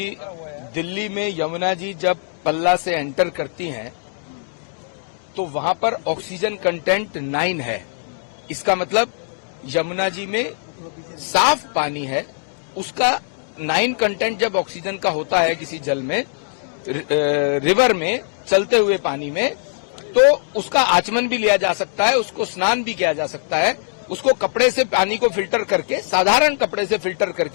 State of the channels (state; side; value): silent; right; digital silence